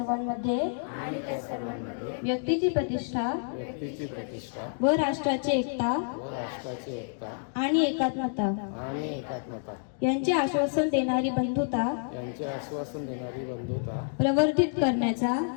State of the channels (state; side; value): silent; right; digital silence